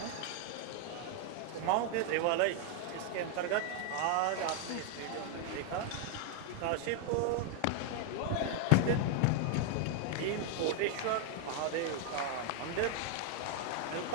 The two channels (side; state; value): both; different; correlation 0.00